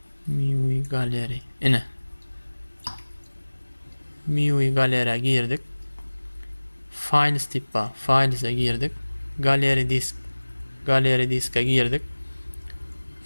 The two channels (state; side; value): inverted; both; correlation -1.00